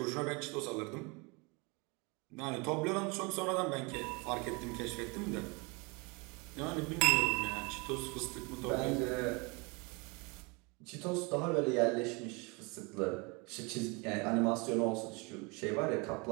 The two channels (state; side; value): quieter; left; 29.0 dB